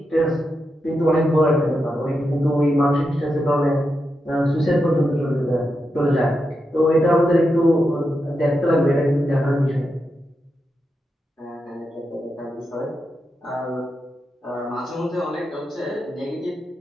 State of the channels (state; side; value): normal; both; correlation 0.86